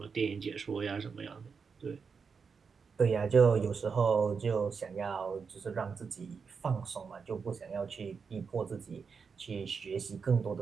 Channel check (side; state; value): left; quieter; 5.6 dB